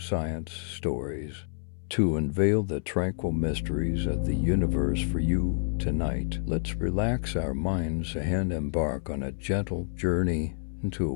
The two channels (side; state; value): right; silent; 59 dB below the other